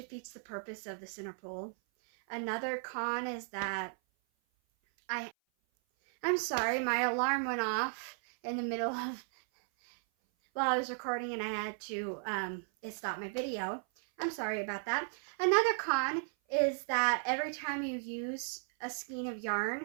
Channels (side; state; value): left; silent; 54 dB below the other